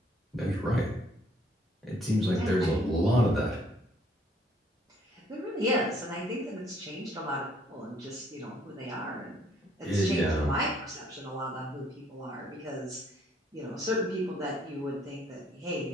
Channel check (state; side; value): normal; both; correlation 0.64